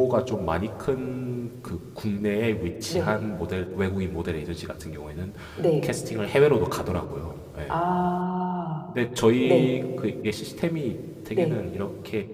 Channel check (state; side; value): identical; both; correlation 1.00